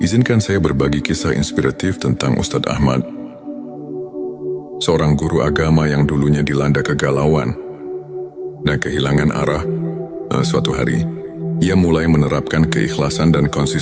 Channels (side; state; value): both; identical; correlation 1.00